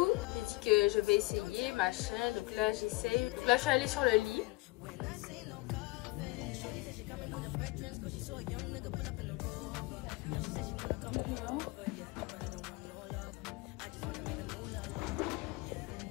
J'ai dit que je vais essayer, machin. Donc là, j'essaye. Donc là, je suis allée sur le lit.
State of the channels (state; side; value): quieter; right; 22.9 dB